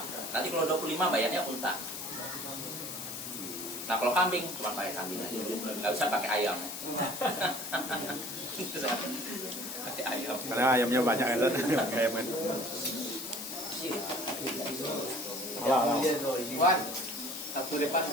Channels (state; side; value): noise; left; hiss, 7 dB below the sound